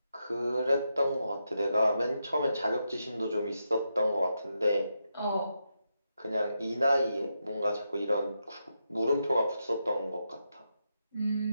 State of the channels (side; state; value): both; inverted; correlation -0.84